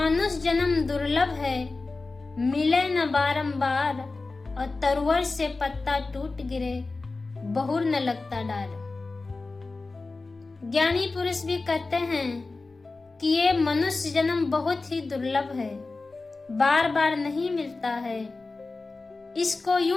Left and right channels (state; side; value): quieter; right; 3.6 dB